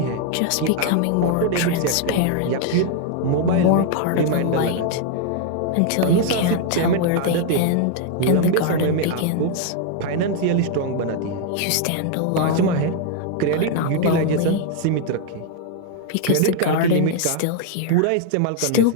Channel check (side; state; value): both; different; correlation 0.00